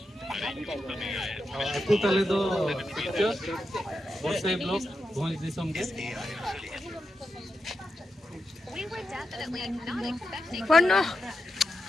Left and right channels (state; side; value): normal; both; correlation 0.88